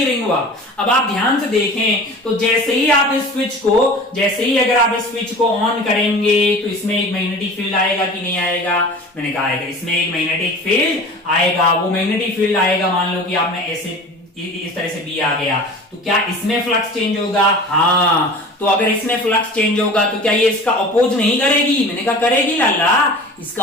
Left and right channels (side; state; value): both; normal; correlation 0.39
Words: रिंग? अब आप ध्यान से देखें तो जैसे ही आप इस स्विच को, जैसे ही अगर आप इस स्विच को ऑन करेंगे तो इसमें एक मैग्नेटिक फील्ड आएगा कि नहीं आएगा? मैंने कहा आएगा, इसमें एक मैग्नेटिक फील्ड आएगा। वो मैग्नेटिक फील्ड आएगा, मान लो कि आपने ऐसे इस तरह से बी आ गया, तो क्या इसमें फ्लक्स चेंज होगा? हाँ, तो अगर इसमें फ्लक्स चेंज होगा तो क्या ये इसका अपोज नहीं करेगी? मैंने कहा करेगी लाला, इसका